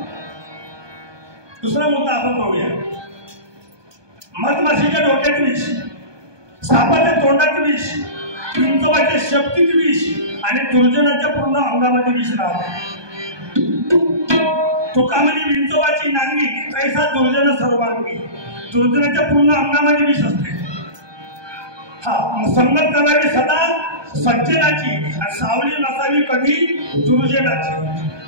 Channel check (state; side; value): late; left; 1.2 ms